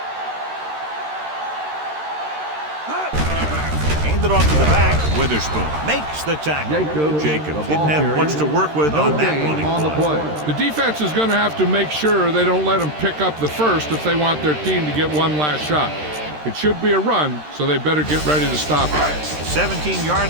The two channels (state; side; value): late; left; 13 ms